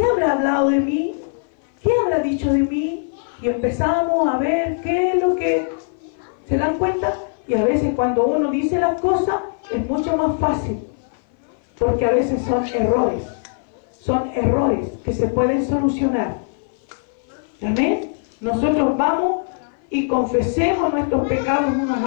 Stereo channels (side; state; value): right; silent; 58 dB below the other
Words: habrá hablado de mí? ¿Qué habrá dicho de mí? Y empezamos a ver qué es lo que... ¿Se dan cuenta? Y a veces cuando uno dice las cosas es mucho más fácil. Porque a veces son errores. Son errores que se pueden solucionar. ¿Amén? Nosotros vamos y confesemos nuestros pecados unos